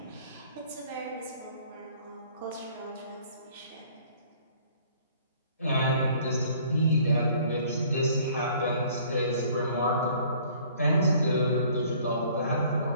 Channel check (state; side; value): inverted; both; correlation -0.56